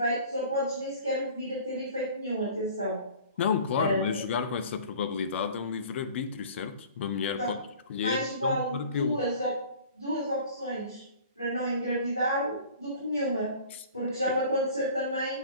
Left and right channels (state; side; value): inverted; both; correlation -0.45